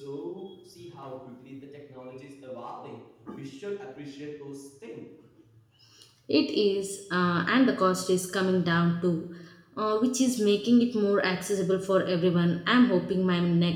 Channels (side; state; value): both; identical; correlation 1.00